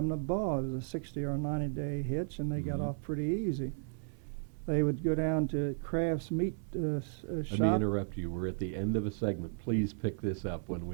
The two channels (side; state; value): left; silent; 55 dB below the other